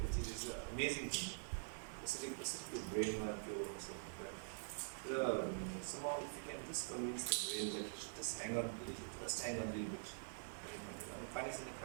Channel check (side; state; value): left; silent; digital silence